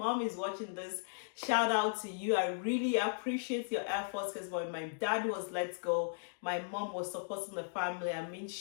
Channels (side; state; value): right; silent; digital silence